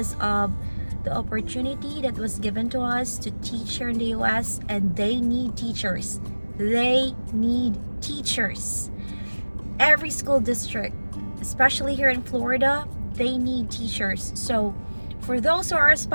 of the opportunity that was given to us to teach here in the US, and they need teachers. They need teachers. Every school district, especially here in Florida, they need teachers. So for those who are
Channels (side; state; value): both; inverted; correlation -1.00